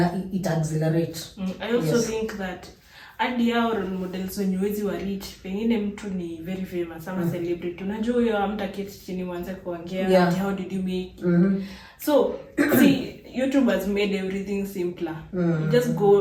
accelerates. I also think that hadi hao role models wenye wezi wa reach, pengine mtu ni very famous ama celebrity, unajua huyo hamtaketi chini mwanze kuongea how did you make so see YouTube has made everything simpler. You just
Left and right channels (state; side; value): identical; both; correlation 1.00